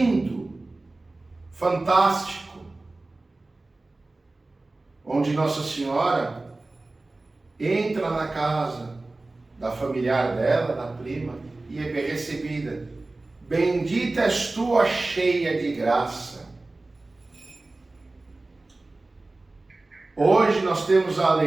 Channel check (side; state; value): left; quieter; 3.1 dB